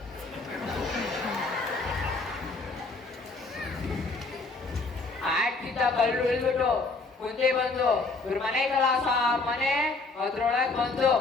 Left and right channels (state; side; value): quieter; right; 3.7 dB